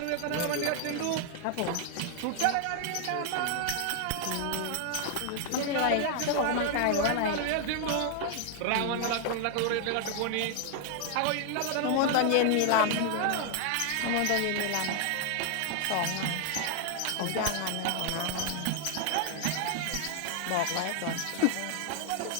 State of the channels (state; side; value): different; both; correlation 0.00